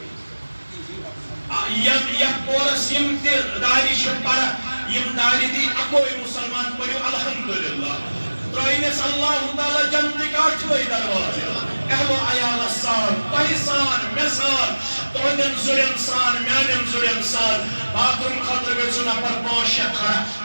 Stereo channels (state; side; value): inverted; both; correlation -1.00